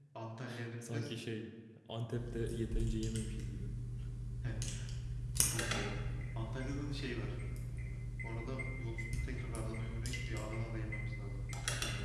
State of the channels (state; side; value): identical; both; correlation 1.00